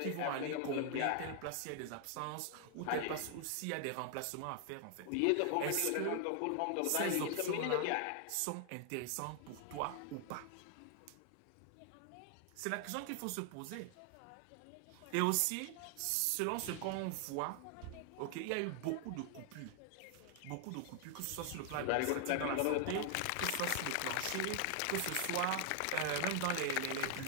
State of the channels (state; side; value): different; both; correlation 0.00